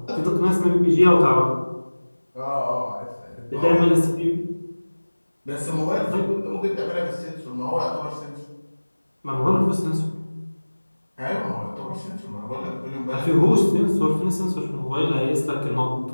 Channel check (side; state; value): both; inverted; correlation -1.00